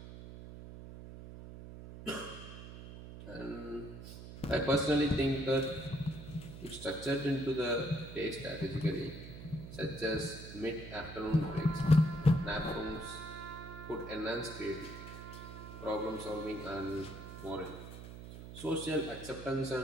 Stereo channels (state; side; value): noise; right; hum, 12 dB below the sound